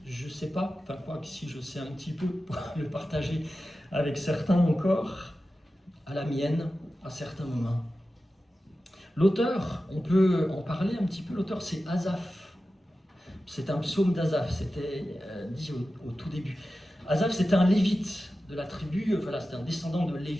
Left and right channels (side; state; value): both; normal; correlation 0.93